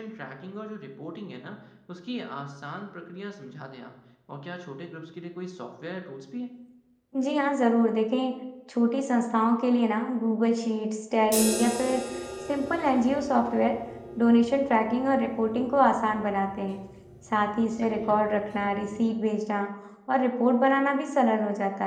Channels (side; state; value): both; identical; correlation 1.00